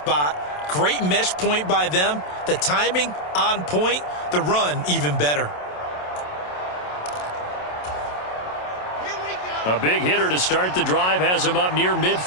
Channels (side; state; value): right; late; 27 ms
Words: Great mesh point by them. The timing on point. The run even better. A big hitter to start the drive has him up near